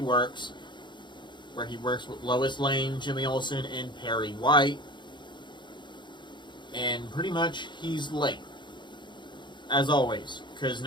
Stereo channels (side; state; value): right; late; 0.22 ms